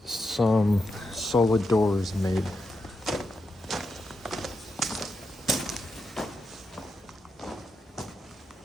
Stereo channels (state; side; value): normal; both; correlation 0.86